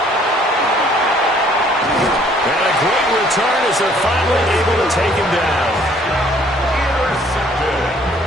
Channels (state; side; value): normal; both; correlation 0.60